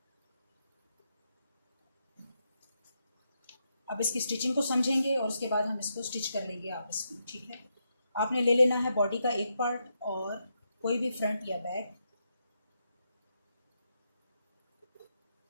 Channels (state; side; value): inverted; both; correlation -0.82